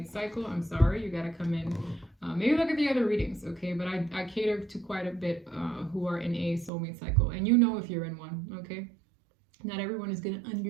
cycle, I'm sorry, you got to come in. Maybe look at the other readings, okay? But I cater to quite a bit who are in a soulmate cycle. And you know if you're in one, okay? Not everyone is going to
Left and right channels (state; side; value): drops out; left; at 6.7 s